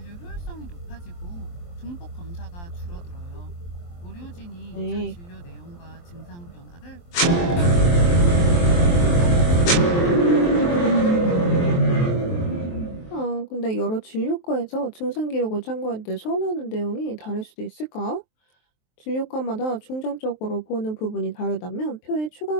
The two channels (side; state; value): right; late; 23 ms